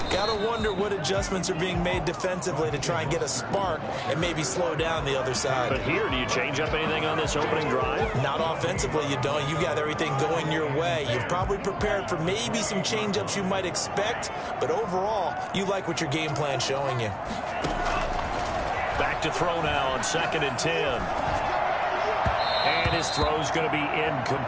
Got to wonder what adjustments are being made defensively to try and get a spark and maybe slow down the other side. But here, do you change up anything on this opening drive? Not offensively, you don't. You got everything going your way. You've probably prepared for maybe some change-ups you might expect, but overall, you like what your game plan's showing you. Back to throw now on 2nd and 10. And his throw's going to be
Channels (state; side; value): identical; both; correlation 1.00